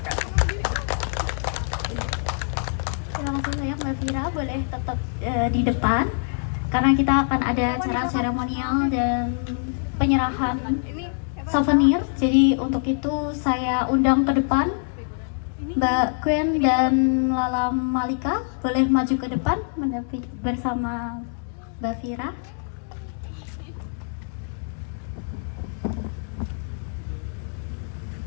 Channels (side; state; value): right; silent; 62 dB below the other